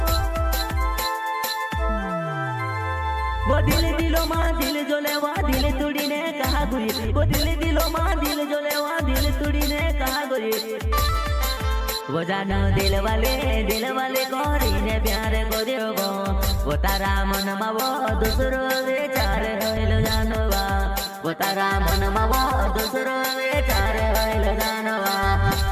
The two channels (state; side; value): identical; both; correlation 1.00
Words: वो दिलो माँ दिल जोले वा दिल तुड़ी ने कहा गुई वो दिलो माँ दिल जोले वा दिल तुड़ी ने कहा गुई वो जानो दिल वाले कोरी ने प्यार करियो गो वो तारा मन मा वो दूसरो विचार होइल जानवा वो तारा मन मा वो दूसरो विचार होइल जानवा।